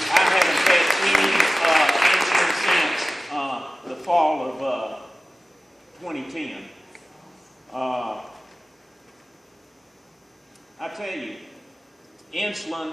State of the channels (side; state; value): both; normal; correlation 0.96